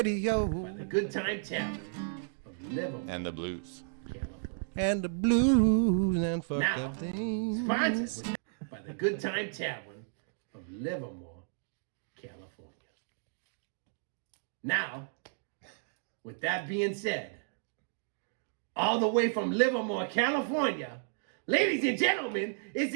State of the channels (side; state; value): left; silent; digital silence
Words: The Good Time Tavern of Livermore, And the blues. California. And the blues and fucked Now, up things. Sponsored by the Good Time Tavern of Livermore, California. Now, with that being said, all the way from Livermore, California, ladies and gentlemen, it's